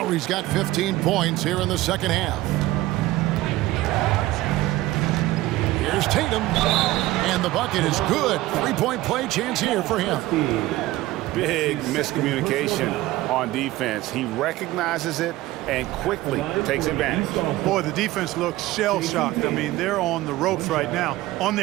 got 15 points here in the second half. Here's Tatum. And the bucket is good. Three-point play chance here for him. Big miscommunication on defense. He recognizes it and quickly takes advantage. Boy, the defense looks shell-shocked. I mean, they're on the ropes right now, on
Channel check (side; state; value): left; quieter; 17.2 dB